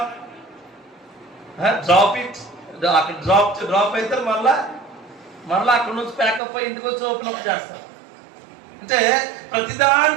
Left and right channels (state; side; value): drops out; left; at 6.4 s